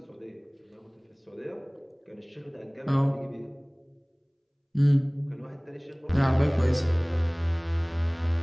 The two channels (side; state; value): both; identical; correlation 1.00